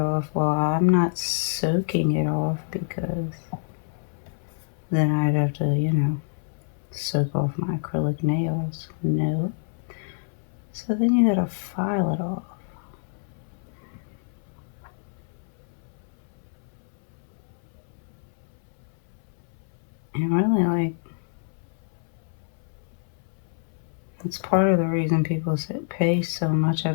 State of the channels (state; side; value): silent; right; 59 dB below the other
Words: Well, I'm not soaking it off because then I'd have to, soak off my acrylic nails. No. So then you gotta file it off. And really, like, that's part of the reason people pay so much